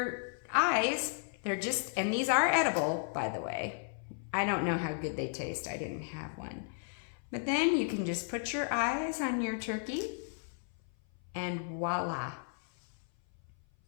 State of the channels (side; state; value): right; silent; 55 dB below the other